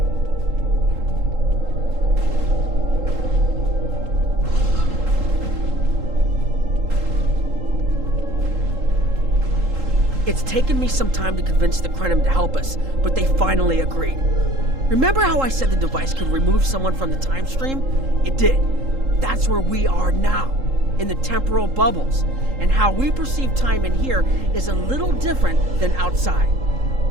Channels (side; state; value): left; late; 3.8 ms